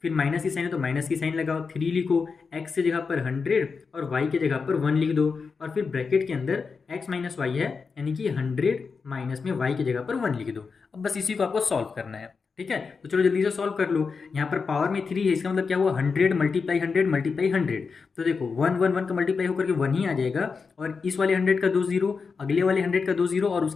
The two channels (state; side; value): quieter; right; 5.1 dB